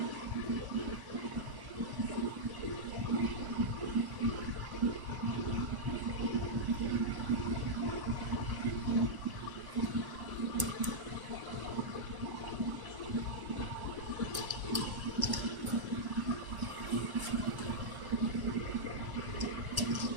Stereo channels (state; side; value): late; left; 1.1 ms